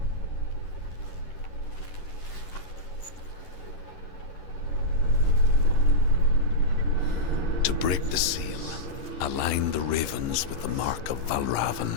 To break the seal, align the ravens with the mark of Valravan.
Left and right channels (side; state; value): right; late; 10 ms